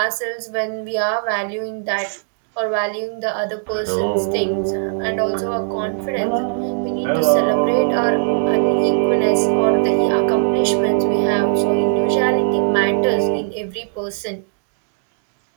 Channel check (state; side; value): silent; left; digital silence